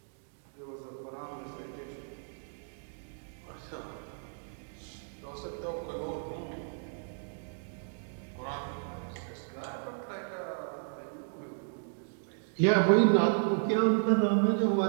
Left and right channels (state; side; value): silent; left; digital silence